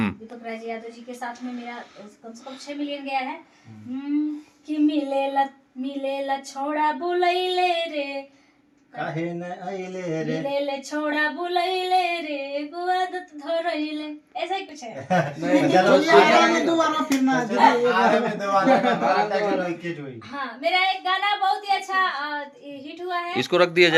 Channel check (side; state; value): both; identical; correlation 1.00